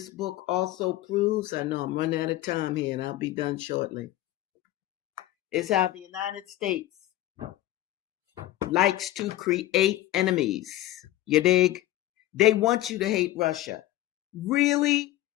book also proves, I know I'm running out of time here and I'll be done shortly, is how the United States likes to create enemies. You dig? They want you to hate Russia. Really?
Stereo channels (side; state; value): right; quieter; 15.3 dB